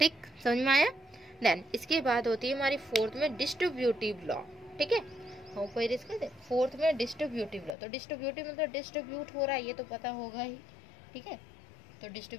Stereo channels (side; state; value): right; drops out; at 7.8 s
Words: समझ में आया। देन इसके बाद होती है हमारी फोर्थ में डिस्ट्रीब्यूटिव लॉ, ठीक है। हम कोई रिस्क करते फोर्थ में डिस्ट्रीब्यूटिव लॉ। तो डिस्ट्रीब्यूटिव मतलब डिस्ट्रीब्यूट हो रहा है, ये तो पता होगा ही, ठीक है। तो